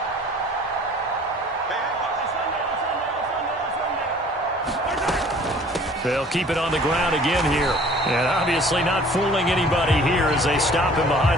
They'll keep it on the ground again here. And obviously not fooling anybody here as they stop him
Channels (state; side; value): normal; both; correlation 0.51